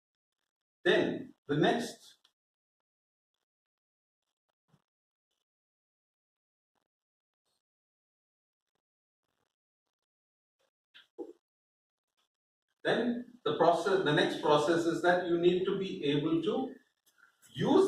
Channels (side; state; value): both; identical; correlation 1.00